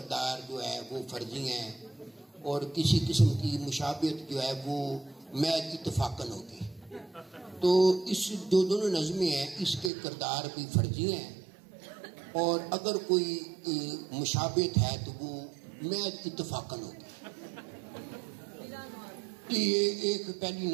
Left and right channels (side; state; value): left; drops out; at 9.9 s